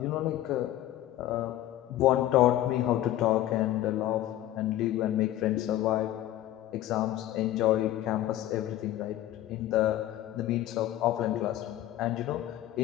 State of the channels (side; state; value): right; quieter; 13.8 dB